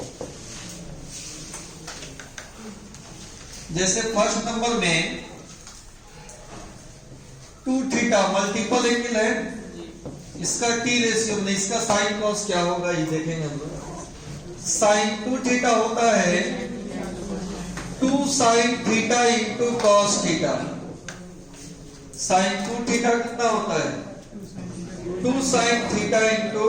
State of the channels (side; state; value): both; identical; correlation 1.00